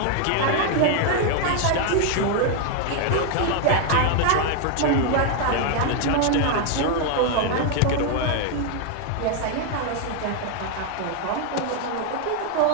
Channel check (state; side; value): different; both; correlation 0.00